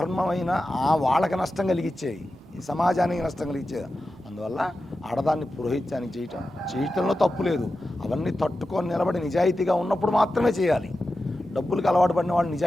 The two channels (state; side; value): normal; both; correlation 0.92